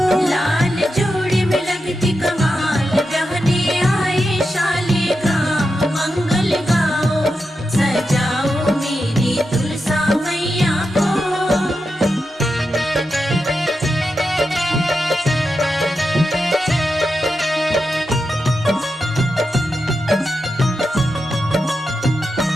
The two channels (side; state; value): both; normal; correlation 0.88